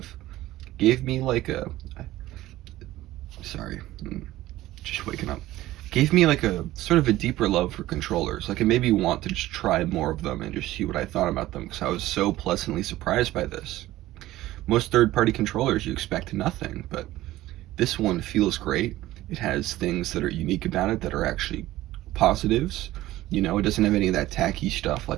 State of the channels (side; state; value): left; quieter; 16.0 dB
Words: gave me like a sorry, just waking up. Gave me like a sort of a deeper love for controllers. Like it made me want to just try more of them and just see what I thought about them because I was so pleasantly surprised by this. Most third-party controllers you expect nothing, but this one feels great. It has things that are unique about it that are actually positives. You know, it doesn't have any of that tacky stuff